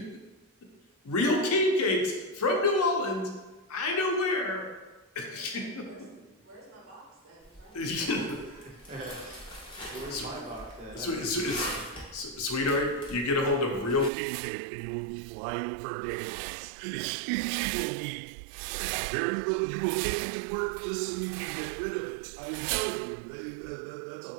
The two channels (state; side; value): drops out; left; at 14.1 s